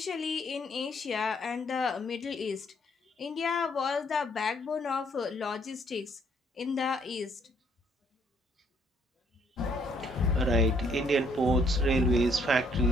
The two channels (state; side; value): normal; both; correlation 0.66